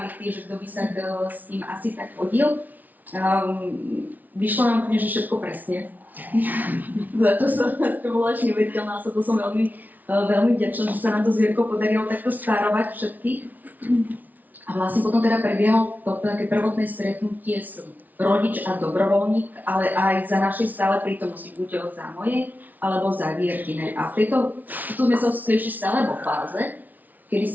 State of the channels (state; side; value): late; left; 0.079 ms